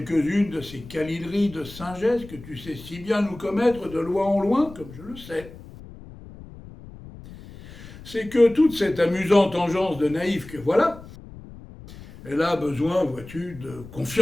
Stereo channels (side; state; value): left; noise; rumble, 17 dB below the sound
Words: de ces câlineries de singesse que tu sais si bien nous commettre de loin en loin, comme je le sais. C'est que toute cette amusante engeance de naïf que voilà, elle a besoin, vois-tu, de